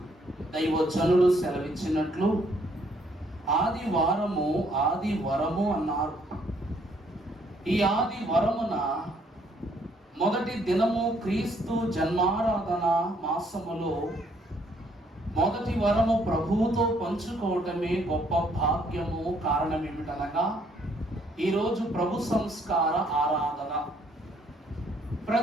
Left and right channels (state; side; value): normal; both; correlation 0.67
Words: దైవజనులు సెలవిచ్చినట్లు ఆదివరము అన్నారు. ఈ ఆదివరమున మొదటి దినము క్రీస్తు జన్మారాధన మాసములో మొదటి వరము ప్రభువుతో పంచుకోవటమే గొప్ప భాగ్యము. కారణం ఏమిటనగా ఈరోజు ప్రభు సంస్కార ఆరాధన.